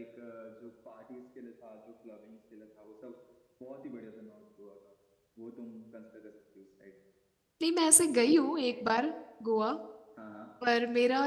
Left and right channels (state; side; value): identical; both; correlation 1.00